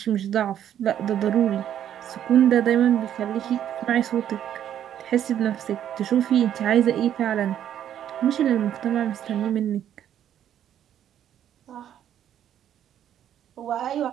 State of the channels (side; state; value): left; quieter; 10.3 dB